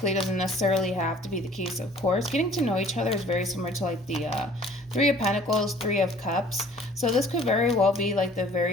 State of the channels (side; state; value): both; normal; correlation 0.52